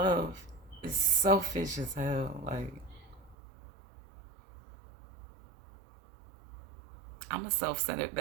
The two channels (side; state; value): left; drops out; at 3.4 s